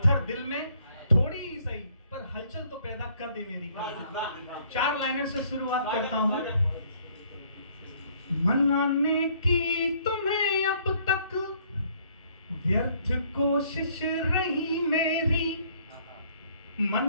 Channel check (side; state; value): both; inverted; correlation -0.63